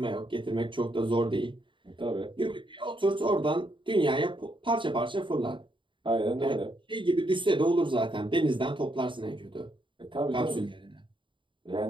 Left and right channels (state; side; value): late; left; 0.24 ms